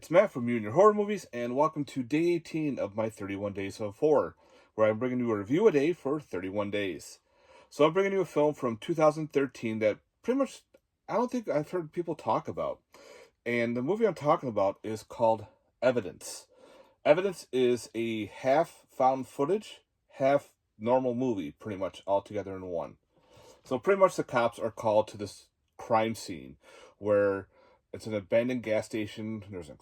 Matt from You and Your Horror Movies, and welcome to day 18 of my 31 Days of Horror, where I'm bringing you a review a day for 31 days. So I'm bringing you a film from 2013 that pretty much I don't think I've heard people talk about. And the movie I'm talking about is called Evidence. Evidence is a half found footage, half normal movie, pretty much all together in one. So pretty much the cops are called to this crime scene where it's an abandoned gas station, there's an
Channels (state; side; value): identical; both; correlation 1.00